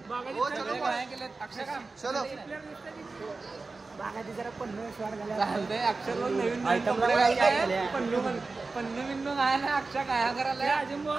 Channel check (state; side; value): quieter; left; 3.8 dB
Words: जरा पन्नू चालतंय. अक्षर नवीन पन्नू बिन्नू काय ना. अक्षा काय करायला.